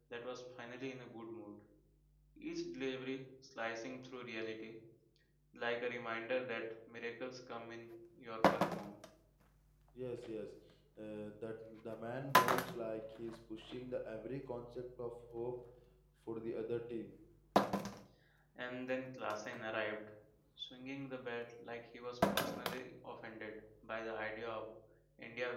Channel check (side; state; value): both; identical; correlation 1.00